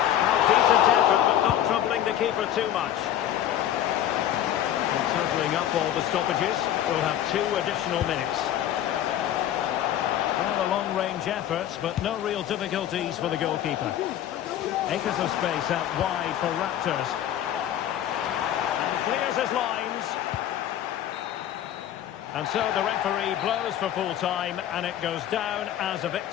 decent effort, but not troubling the keeper too much. And totalling up all the stoppages, we'll have 2 additional minutes. Well, a long-range effort, but no real difficulties for the goalkeeper. Acres of space out wide for Raptors. And clears his lines. And so the referee blows for full time, and it goes down as a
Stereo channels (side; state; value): right; quieter; 11.4 dB